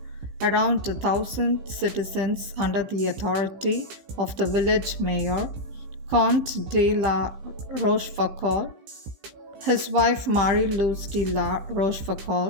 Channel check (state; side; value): late; left; 15 ms